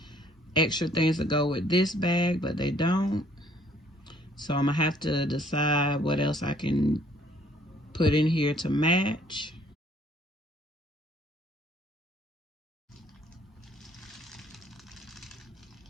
extra things to go with this bag, but they don't. So I'm gonna have to decide what else I can put in here to match.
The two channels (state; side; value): normal; both; correlation 0.61